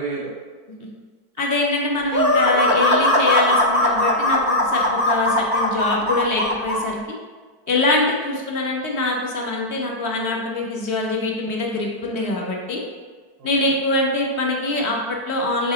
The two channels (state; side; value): late; left; 4.5 ms